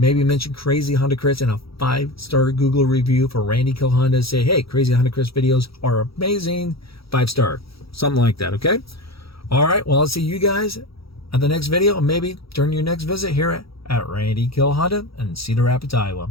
mention Crazy Honda Chris and a 5-star Google review for Randy Kill Honda. Say, hey, Crazy Honda Chris videos are amazing. 5-star, something like that, okay? All right, well, I'll see you guys at the next video, and maybe during your next visit here at Randy Kill Honda in Cedar Rapids, Iowa.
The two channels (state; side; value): late; right; 0.76 ms